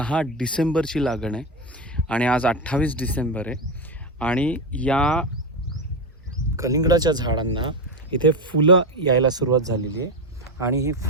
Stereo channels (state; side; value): normal; both; correlation 0.13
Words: डिसेंबरची लागण आहे आणि आज 28 डिसेंबर आहे. आणि या कलिंगडाच्या झाडांना इथे फुलं यायला सुरुवात झालेली आहे. आणि ही